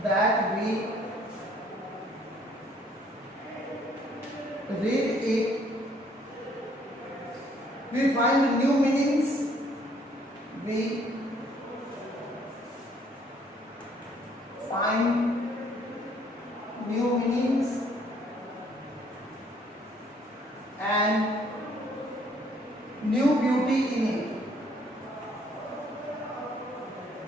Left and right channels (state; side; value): normal; both; correlation 0.63